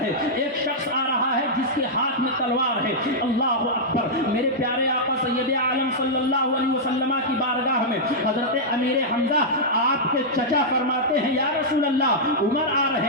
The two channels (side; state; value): both; normal; correlation -0.09